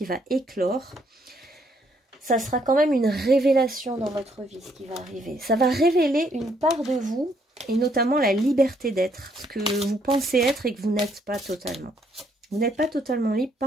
va éclore. Ça sera quand même une révélation dans votre vie, ce qui va arriver. Ça va révéler une part de vous, et notamment la liberté d'être, ce que vous pensez être et que vous n'êtes pas totalement. Vous n'êtes pas totalement libre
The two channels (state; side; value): normal; both; correlation 0.70